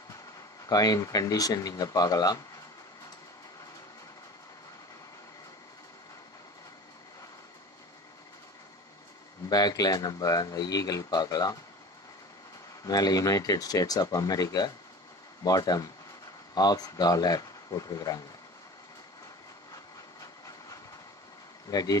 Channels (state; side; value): normal; both; correlation 0.38